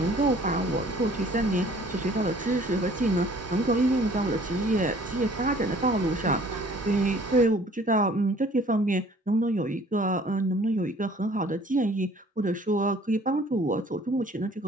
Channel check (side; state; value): both; normal; correlation 0.54